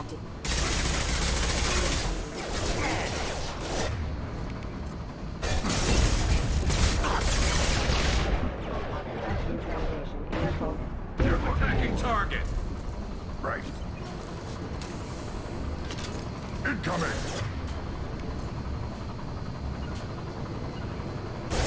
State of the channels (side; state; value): both; identical; correlation 1.00